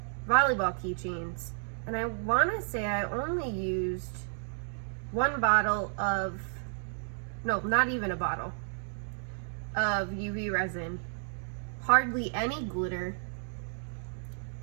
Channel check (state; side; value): silent; left; digital silence